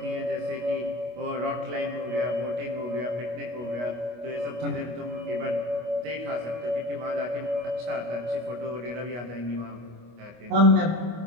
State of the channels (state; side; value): late; left; 25 ms